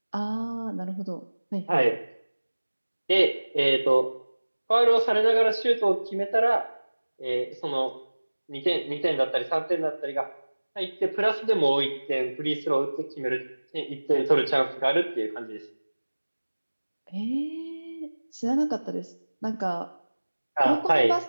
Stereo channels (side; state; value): both; inverted; correlation -1.00